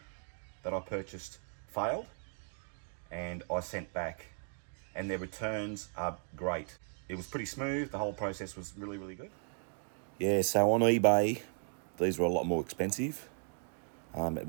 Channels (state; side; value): silent; left; 54 dB below the other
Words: that I purchased failed and I sent back, and their returns are great. It was pretty smooth, the whole process was really good. Yeah, so on eBay, these were a lot more expensive, at